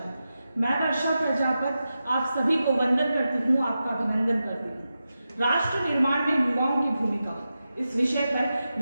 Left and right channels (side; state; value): both; inverted; correlation -0.91